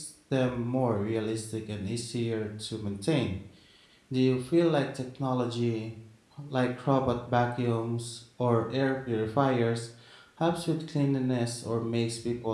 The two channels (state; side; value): identical; both; correlation 1.00